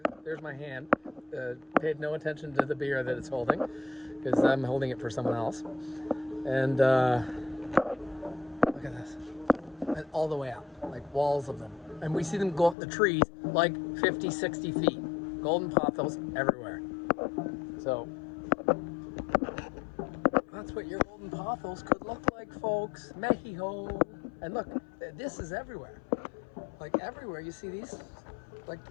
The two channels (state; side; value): drops out; right; at 12.8 s